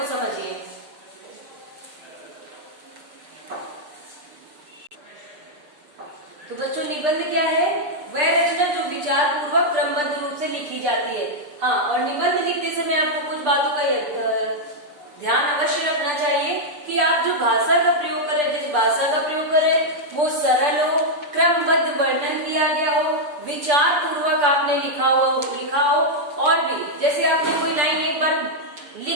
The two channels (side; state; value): left; late; 6.8 ms